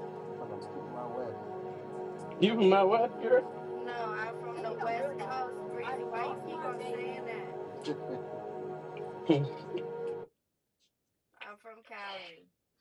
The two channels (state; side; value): identical; both; correlation 1.00